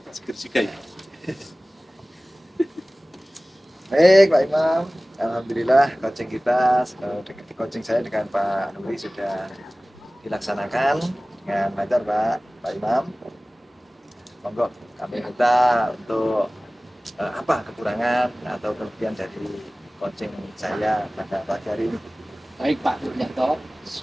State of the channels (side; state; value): both; normal; correlation 0.98